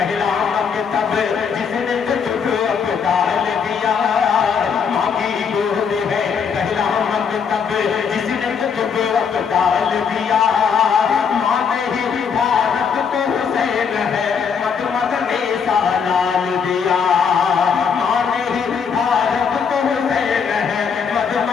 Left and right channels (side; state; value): right; quieter; 6.5 dB